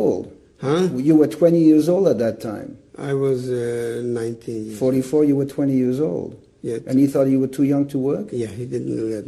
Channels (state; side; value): identical; both; correlation 1.00